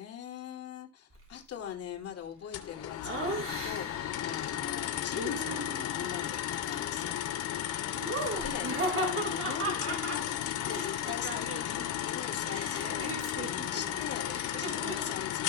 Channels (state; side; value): quieter; right; 6.0 dB